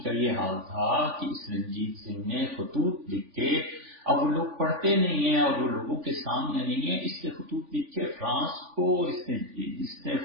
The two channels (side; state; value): left; late; 3.5 ms